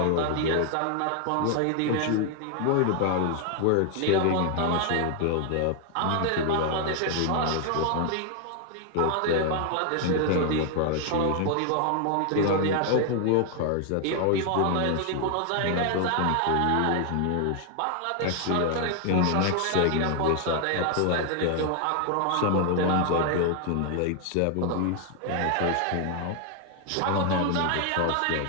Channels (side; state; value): both; different; correlation 0.00